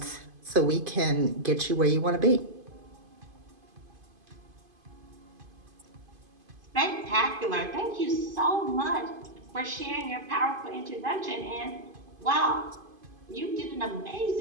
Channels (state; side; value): late; left; 2.5 ms